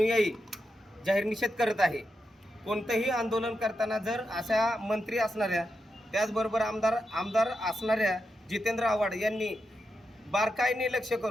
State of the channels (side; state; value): both; normal; correlation 0.86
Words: जाहीर निषेध करत आहे। कोणतेही आंदोलन करताना जर अशा मंत्री असणाऱ्या त्याचबरोबर आमदार असणाऱ्या जितेंद्र आव्हाड यांनी बारकाईने लक्ष